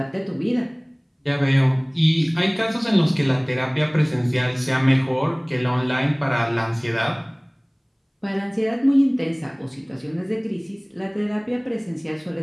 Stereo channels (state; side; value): identical; both; correlation 1.00